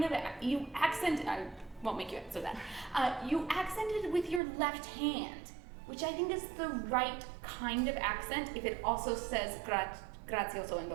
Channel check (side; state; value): left; drops out; at 4.4 s